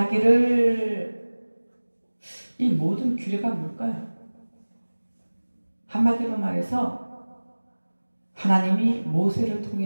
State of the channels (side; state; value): both; inverted; correlation -1.00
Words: 이 모든 규례가 뭘까요? 한마디로 말해서 하나님이 모세를